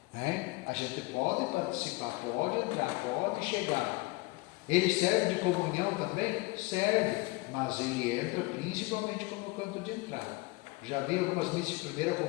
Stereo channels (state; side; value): quieter; right; 23.0 dB